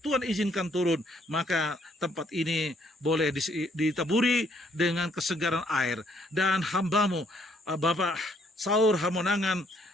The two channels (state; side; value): normal; both; correlation 0.68